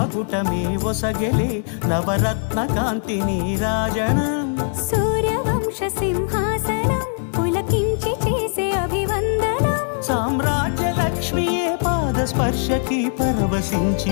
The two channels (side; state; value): right; silent; 64 dB below the other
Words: ఒసగెలే నవరత్న కాంతి నీరాజనం సూర్యవంశ సింహాసనం పులకించి చేసే అభివందనం సామ్రాజ్య లక్ష్మియే పాద స్పర్శకి